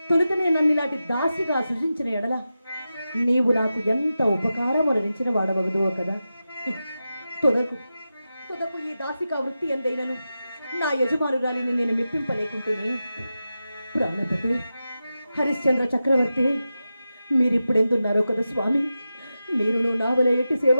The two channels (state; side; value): inverted; both; correlation -0.91